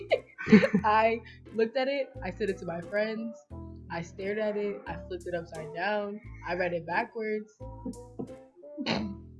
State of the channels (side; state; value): both; identical; correlation 1.00